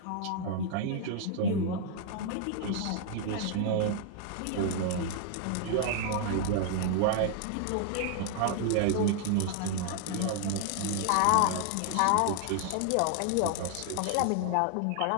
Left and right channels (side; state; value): both; different; correlation 0.00